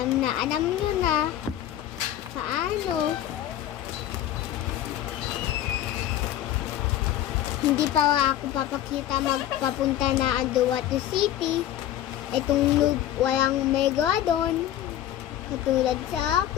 nyo na paano. Hindi pa ako papakita magpapunta na Andahuaylas City. Itong walang mega doon. Katulad sa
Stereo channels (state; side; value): quieter; right; 12.3 dB